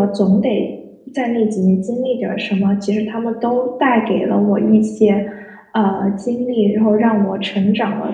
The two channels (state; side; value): identical; both; correlation 1.00